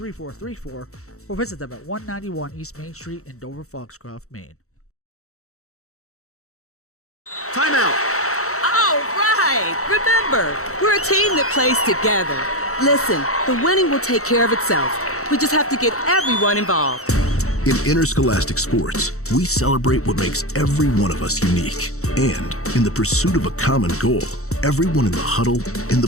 or visit them at 191 East Main Street in Dover Foxcroft, Maine. Timeout! All right! Remember, we're a team that plays together. Listen, the winning will take care of itself. We just have to get everyone involved. In interscholastic sports, we celebrate what makes every one of us unique. And in the pursuit of a common goal, everyone in the huddle, in the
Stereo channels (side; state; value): right; late; 0.64 ms